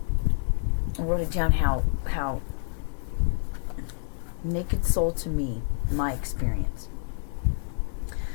I wrote it down how Naked Soul to me, my experience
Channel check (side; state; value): right; silent; 60 dB below the other